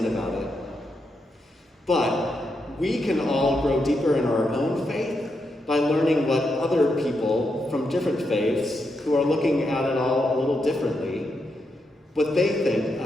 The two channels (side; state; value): both; normal; correlation 0.83